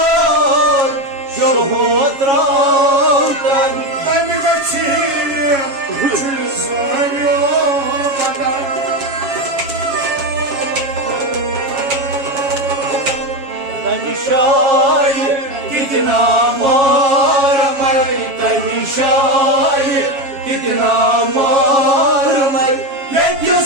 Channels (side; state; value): left; late; 7.2 ms